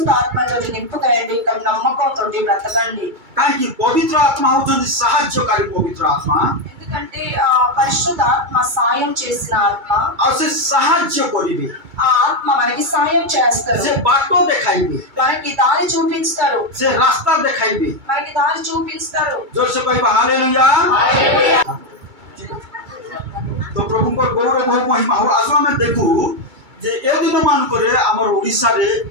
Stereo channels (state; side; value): late; left; 2.3 ms